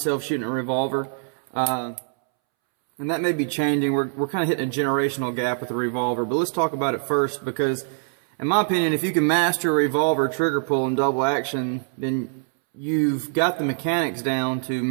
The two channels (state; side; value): silent; left; 63 dB below the other